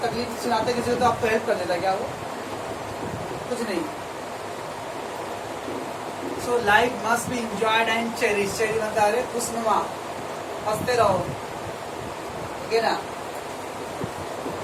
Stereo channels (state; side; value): identical; both; correlation 1.00